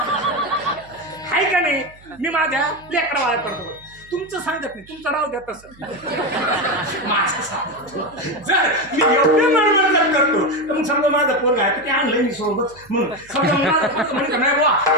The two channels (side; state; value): right; noise; hum, 25 dB below the sound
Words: हाय का नाही. मी माझ्या लेकरा वाया करतो. तुमचं सांगत नाही, तुमचं राव द्या तसं. जर मी एवढं मरमर करतो तर मग समजा माझा पोरगा आहे ते आणलंय मी सोबत म्हणून समजा माझा पोरगा म्हणजे नाही बुवा